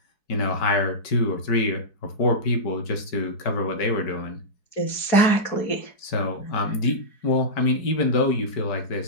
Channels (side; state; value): right; late; 4.7 ms